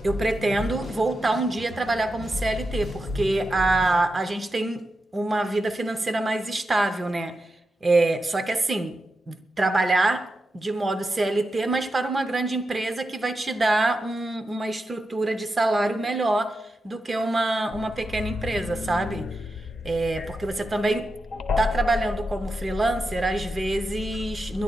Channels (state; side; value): normal; both; correlation 0.89